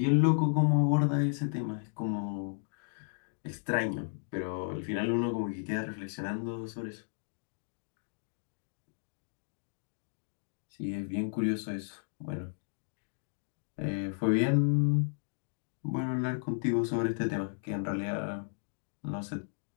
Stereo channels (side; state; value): right; silent; digital silence